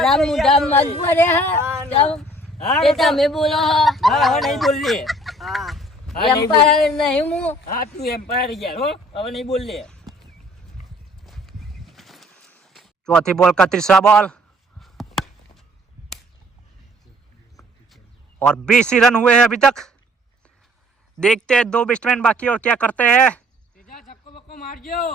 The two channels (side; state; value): both; normal; correlation 0.57